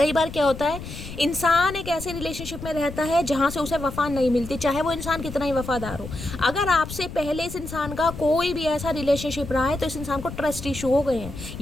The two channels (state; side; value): noise; left; rumble, 11 dB below the sound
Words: बार क्या होता है, इंसान एक ऐसे रिलेशनशिप में रहता है जहाँ से उसे वफा नहीं मिलती, चाहे वो इंसान कितना ही वफादार हो। अगर आपसे पहले इस इंसान का कोई भी ऐसा रिलेशनशिप रहा है तो इस इंसान को ट्रस्ट इशू हो गए हैं,